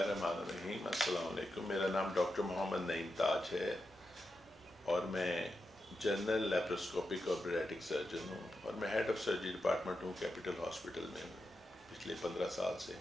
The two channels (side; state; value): both; normal; correlation 0.88